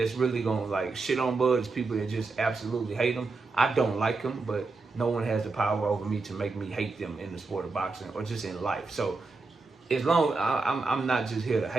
really gonna like shit on Bud is people that just absolutely hate him. I don't like him, but no one has the power over me to make me hate them in the sport of boxing or just in life. So as long I'm not just here to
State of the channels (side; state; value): left; quieter; 3.9 dB